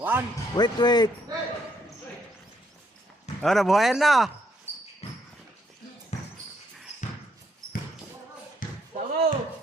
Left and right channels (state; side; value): normal; both; correlation 0.72